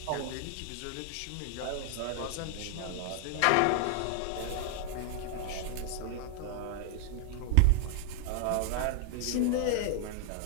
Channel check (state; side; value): different; both; correlation -0.01